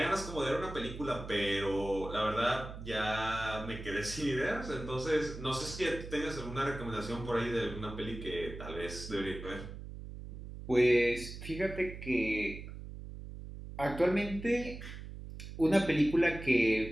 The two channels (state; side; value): noise; right; hum, 11 dB below the sound